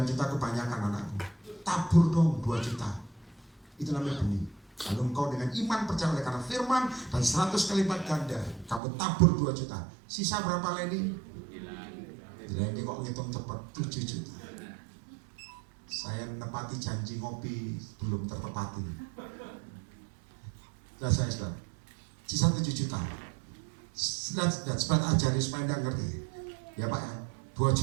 juta kebanyakan anakku. Tabur dong 2 juta. Itu namanya benih. Lalu engkau dengan iman percaya oleh karena firman dan 100 kali lipat ganda, kamu tabur 2 juta. Sisa berapa Leni? Leni kok ngitung cepat, 7 juta. Saya menepati janji ngopi belum tertepati. Nah saya sudah sisa 7 juta. Supaya ajari supaya Anda ngerti. Ya Pak ya, 2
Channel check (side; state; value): left; drops out; at 8.8 s